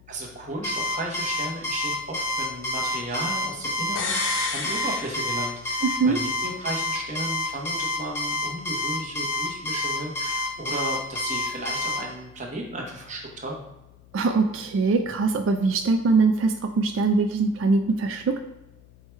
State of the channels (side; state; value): left; noise; hum, 24 dB below the sound